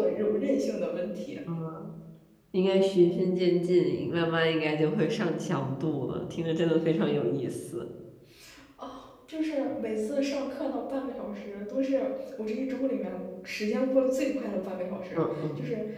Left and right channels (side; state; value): both; identical; correlation 1.00